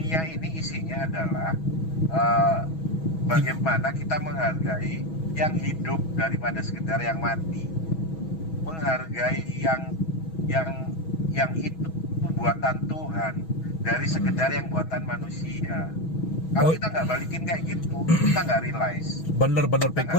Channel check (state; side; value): late; right; 6.2 ms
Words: ini isinya adalah bagaimana kita menghargai yang hidup daripada sekedar yang mati, menghargai yang itu buatan Tuhan dari sekedar yang buatan manusia. Kalau Oh. kita nggak balikin kayak gitu, kita nggak realize. Bener Pek.